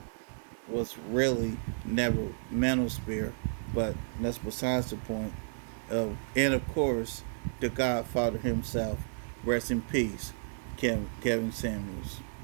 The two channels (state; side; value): silent; left; digital silence